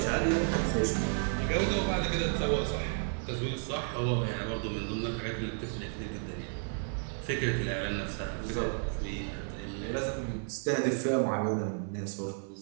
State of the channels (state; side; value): silent; left; 56 dB below the other